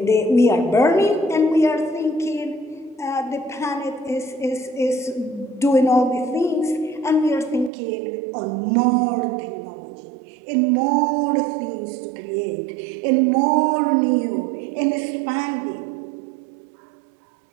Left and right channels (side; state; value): left; drops out; at 7.7 s